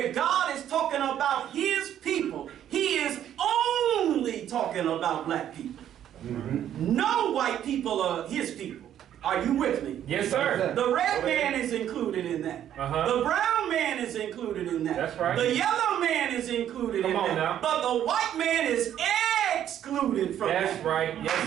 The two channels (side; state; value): left; quieter; 10.6 dB